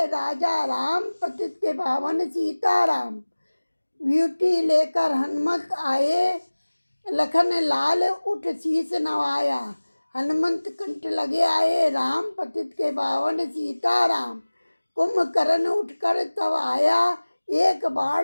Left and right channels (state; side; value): inverted; both; correlation -1.00